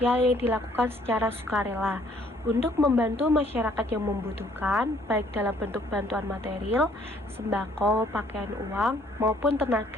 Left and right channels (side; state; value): both; normal; correlation 0.62